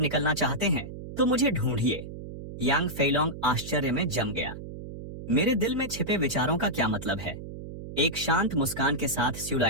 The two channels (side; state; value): right; noise; hum, 11 dB below the sound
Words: चाहते हैं तो मुझे ढूंढिए। यांग फेलोंग आश्चर्य में जम गया। मेरे दिल में छिपे विचारों का क्या मतलब है? एक शांत मुस्कान के साथ